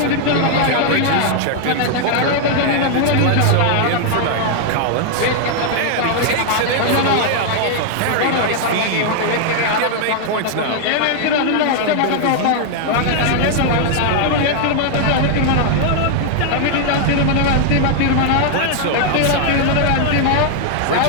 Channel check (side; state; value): both; different; correlation 0.00